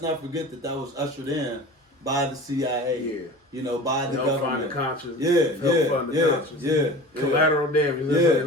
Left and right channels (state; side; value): normal; both; correlation 0.37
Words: not forget that was ushered in by the CIA. Yeah. You know, by the help government. find the conscious. Yeah. Collateral damage. That's how they